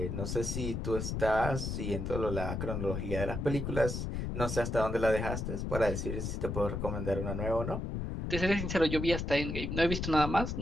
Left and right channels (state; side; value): noise; left; rumble, 3 dB below the sound